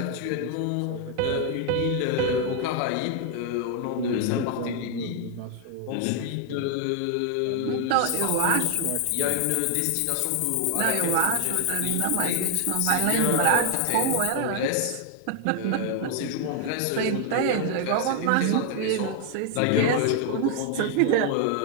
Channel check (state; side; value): different; both; correlation 0.00